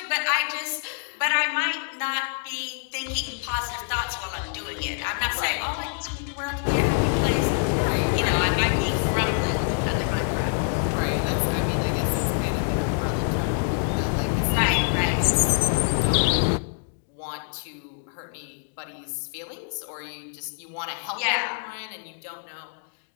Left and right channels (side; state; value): right; silent; digital silence